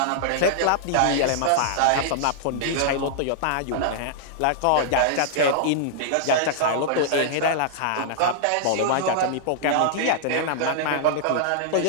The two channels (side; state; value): both; different; correlation -0.01